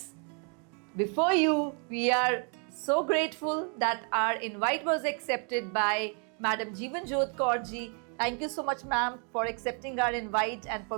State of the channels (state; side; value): quieter; left; 39.9 dB